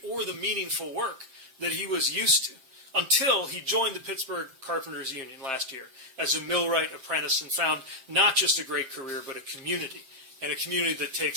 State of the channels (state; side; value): late; left; 7.6 ms